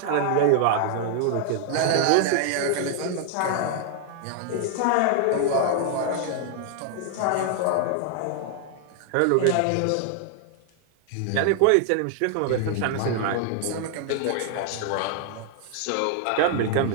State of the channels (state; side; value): different; both; correlation 0.00